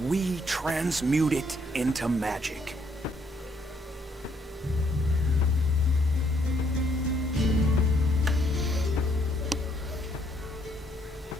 we transmute it into magic.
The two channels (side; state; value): both; normal; correlation 0.69